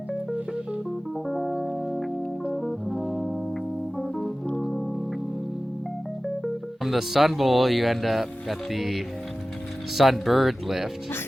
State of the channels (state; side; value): normal; both; correlation 0.96